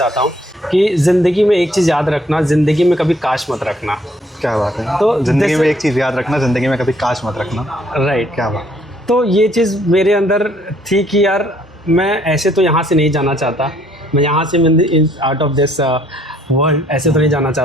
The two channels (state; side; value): normal; both; correlation 0.64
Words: हूँ कि ज़िंदगी में एक चीज़ याद रखना, ज़िंदगी में कभी काश मत रखना। क्या बात है। तो ज़िंदगी में एक चीज़ याद रखना, ज़िंदगी में कभी काश मत रखना, राइट। क्या बात। तो ये चीज़ मेरे अंदर थी कि यार मैं ऐसे तो यहाँ से नहीं जाना चाहता, मैं यहाँ से आउट ऑफ दिस वर्ल्ड ऐसे तो नहीं जाना